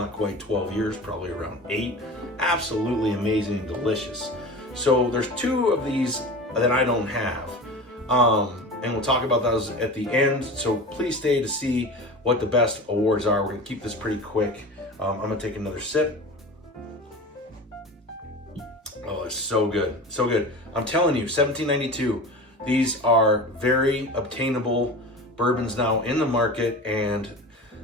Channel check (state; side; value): normal; both; correlation 0.33